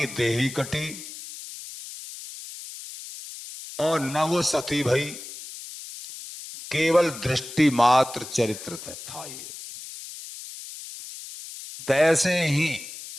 देही कटी और न वो सती भई, केवल दृष्टि मात्र चरित्र था ये। तैसे ही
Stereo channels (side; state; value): left; noise; hiss, 12 dB below the sound